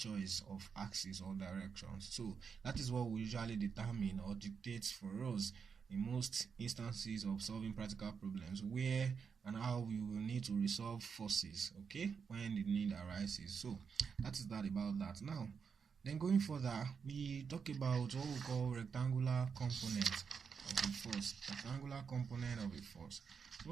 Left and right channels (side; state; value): left; quieter; 6.2 dB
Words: of axis or directions. So that is what we usually determine or dictates for us in most instances of solving practical problems, where and how we will need to resolve forces, okay, when the need arises. So that is that about that. Now, then going further, we talk about what we call rectangular component of a force. Rectangular component of a force. So